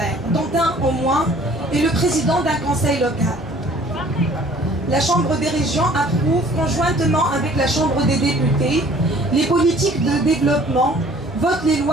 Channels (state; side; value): normal; both; correlation 0.53